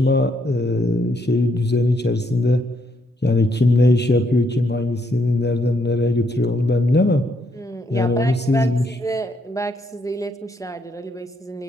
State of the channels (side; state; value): both; normal; correlation 0.74